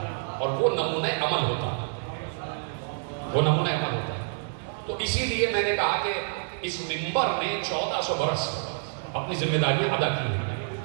اور وہ نمونہ عمل ہوتا ہے, وہ نمونہ عمل ہوتا ہے. تو اسی لیے میں نے کہا کہ اس منبر نے 1400 برس اپنی ذمہ داریاں ادا کی ہیں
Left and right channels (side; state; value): left; silent; digital silence